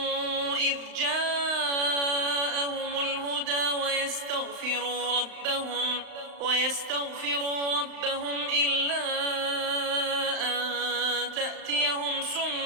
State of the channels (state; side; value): late; left; 35 ms